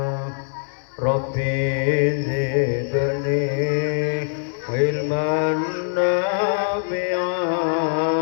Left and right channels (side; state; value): right; silent; digital silence